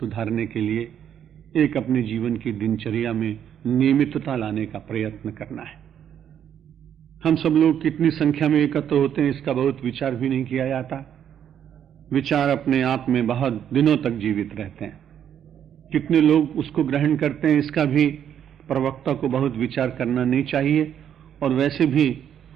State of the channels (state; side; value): quieter; left; 9.3 dB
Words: के लिए एक अपने जीवन की दिनचर्या में नियमितता लाने का प्रयत्न करना है। हम सब लोग कितनी संख्या में एकत्र होते हैं इसका बहुत विचार भी नहीं किया जाता। विचार अपने आप में बहुत दिनों तक जीवित रहते हैं। कितने लोग उसको ग्रहण करते हैं इसका भी प्रवक्ता को बहुत विचार करना नहीं चाहिए, और वैसे भी